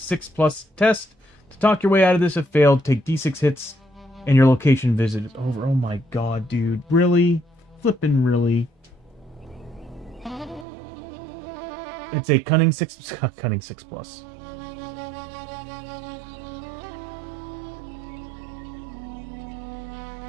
test. To talk your way out of this if failed, take D6 hits and your location visit is over. Oh my god, dude. Really? Flippin' really? It's a cunning 6 cunning 6+.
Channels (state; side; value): drops out; left; at 10.7 s